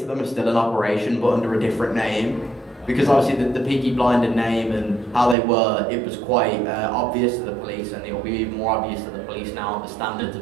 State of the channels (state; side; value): drops out; left; at 5.4 s